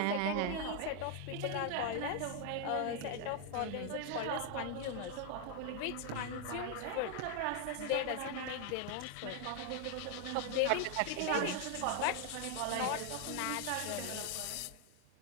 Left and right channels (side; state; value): both; different; correlation 0.00